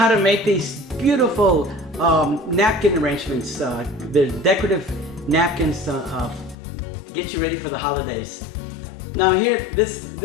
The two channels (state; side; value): drops out; right; at 6.6 s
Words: to make these beautiful napkin arrangements. They're decorative napkins to get you ready for the holidays. Now here, this